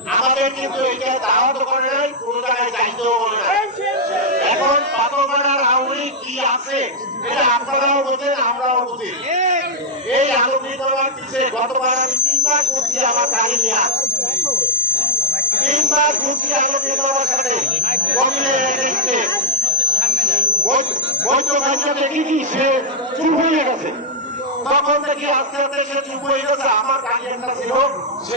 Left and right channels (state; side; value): normal; both; correlation -0.05